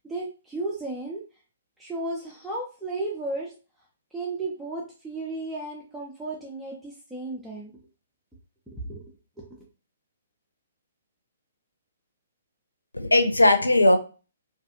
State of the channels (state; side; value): inverted; both; correlation -0.76